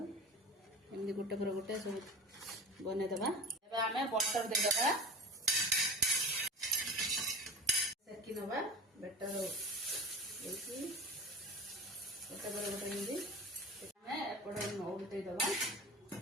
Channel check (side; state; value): both; normal; correlation 0.34